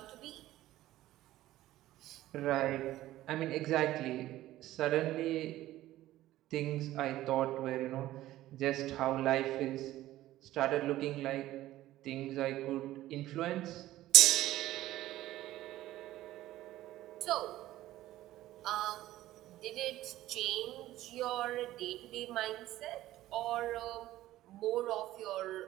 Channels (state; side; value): quieter; left; 15.1 dB